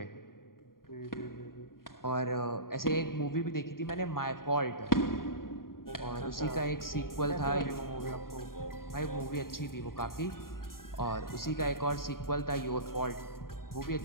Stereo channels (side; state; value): right; late; 0.91 ms